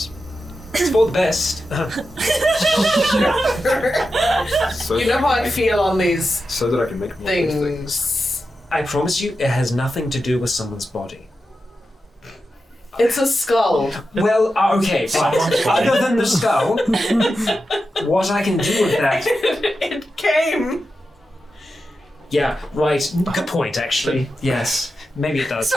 for the best. So You know how I feel on these So that I can make more things. things. I promise you, it has nothing to do with someone's body. It's a skull. Well, okay, fine. Other than the skull, what I can do with that? It came. Yeah, right. Good point, actually. Yes, maybe it does.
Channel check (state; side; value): normal; both; correlation 0.90